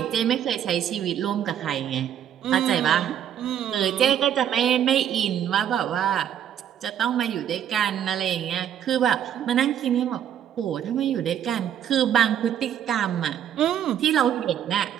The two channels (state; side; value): quieter; left; 9.8 dB